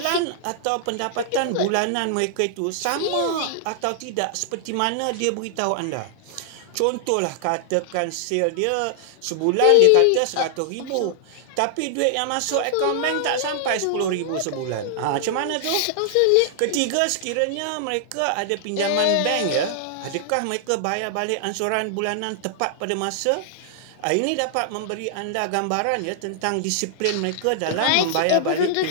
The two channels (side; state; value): both; different; correlation -0.01